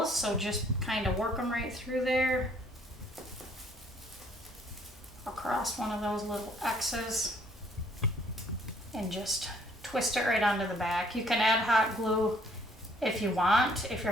so just kind of work them right through there, across one of those little X's, and just twist it right onto the back. You can add hot glue if you want. If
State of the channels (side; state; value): both; normal; correlation 0.62